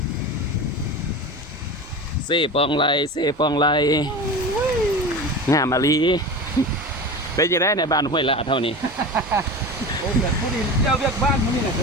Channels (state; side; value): normal; both; correlation 0.29